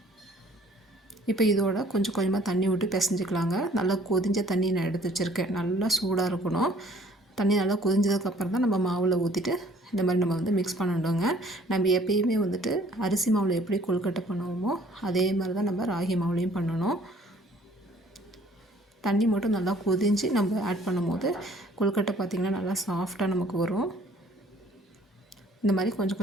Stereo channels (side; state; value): both; normal; correlation 0.57